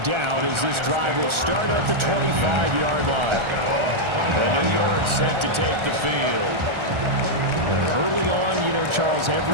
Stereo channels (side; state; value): left; late; 1.3 ms